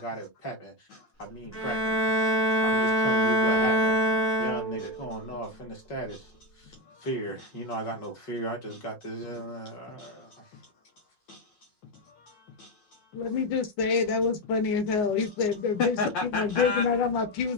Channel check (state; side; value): late; right; 5.6 ms